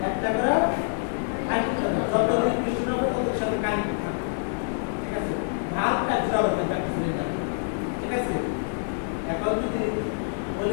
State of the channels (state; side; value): silent; right; digital silence